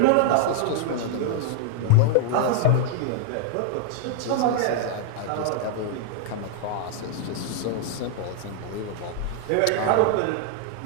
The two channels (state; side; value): different; both; correlation -0.01